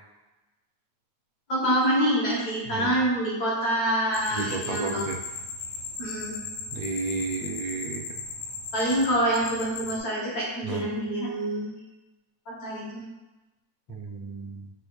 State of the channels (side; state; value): right; late; 8.8 ms